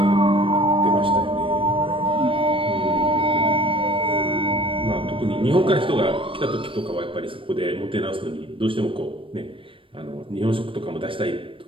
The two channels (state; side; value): late; left; 0.25 ms